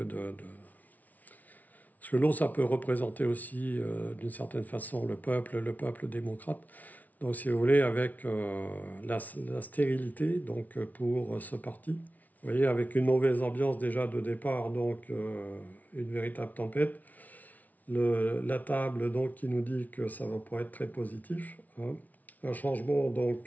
parce que l'eau, ça peut représenter aussi, d'une certaine façon, le peuple démocrate. Donc, si vous voulez, avec la stérilité, donc, pour ce parti. Vous voyez, avec une mauvaise ambiance déjà de départ, donc une véritable tempête. La table donc qui nous dit que ça va pas être très positif, hein. Un changement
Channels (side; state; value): right; late; 0.075 ms